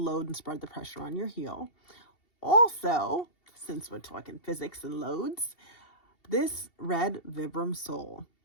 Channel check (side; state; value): right; late; 2.7 ms